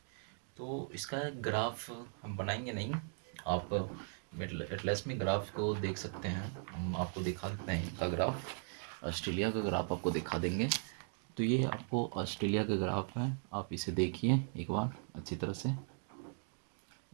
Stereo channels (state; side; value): silent; left; 52 dB below the other